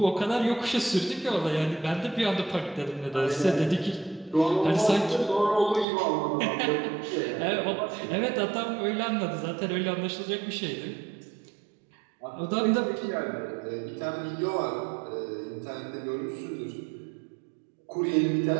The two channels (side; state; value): left; drops out; at 5.9 s